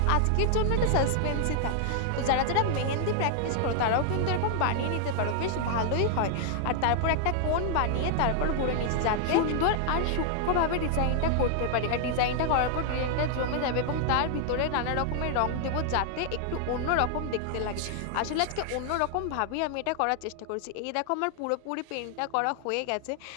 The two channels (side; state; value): both; different; correlation 0.00